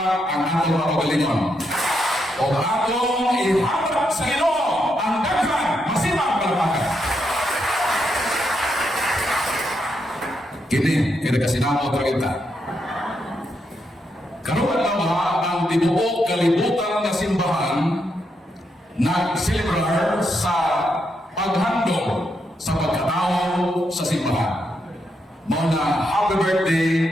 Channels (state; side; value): normal; both; correlation 0.81